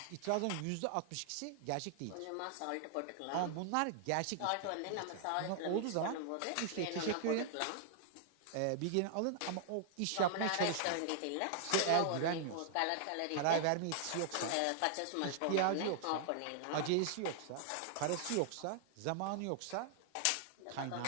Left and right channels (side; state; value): both; different; correlation -0.01